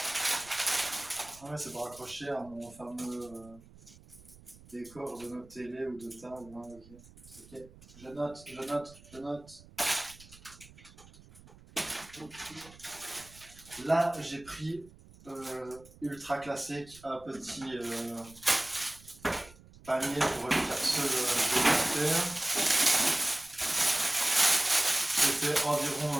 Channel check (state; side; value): noise; right; rumble, 22 dB below the sound